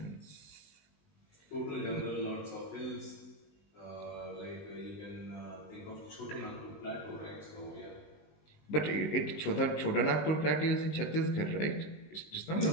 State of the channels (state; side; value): late; right; 19 ms